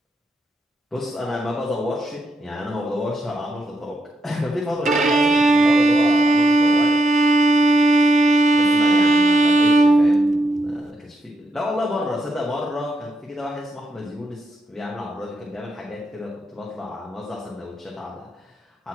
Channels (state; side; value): normal; both; correlation 0.81